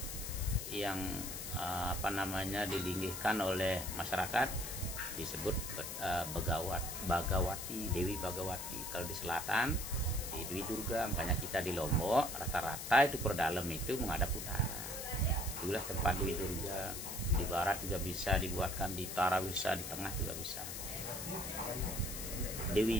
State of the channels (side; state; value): left; noise; hiss, 6 dB below the sound